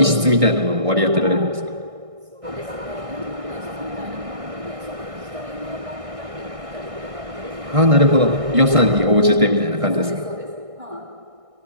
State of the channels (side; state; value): left; late; 1.6 ms